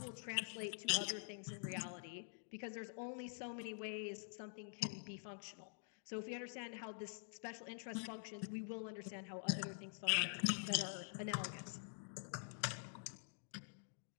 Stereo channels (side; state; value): right; silent; digital silence